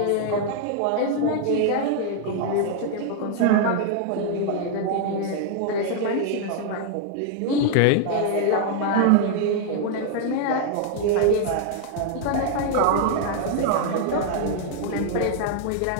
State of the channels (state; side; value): different; both; correlation 0.00